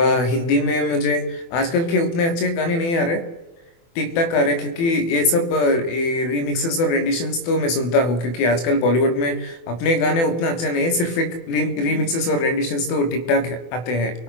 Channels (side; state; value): right; late; 24 ms